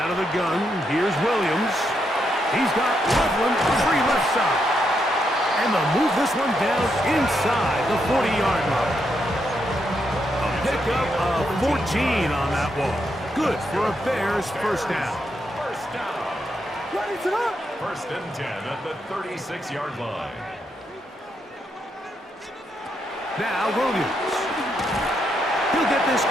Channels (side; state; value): both; normal; correlation 0.80